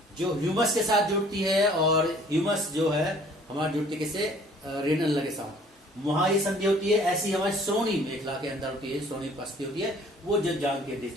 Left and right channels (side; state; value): both; normal; correlation 0.55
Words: जो ह्यूमस के साथ जुड़ती है, और ह्यूमस जो है हमारी जुड़ती है किससे, रेनल के साथ, वहां ये संधि होती है। ऐसी हमारी श्रोणी मेखला के अंदर होती है, श्रोणी पस्ती होती है, वो जब जांग के बीच